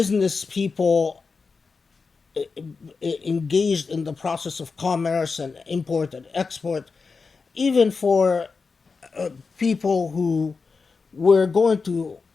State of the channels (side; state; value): right; quieter; 4.7 dB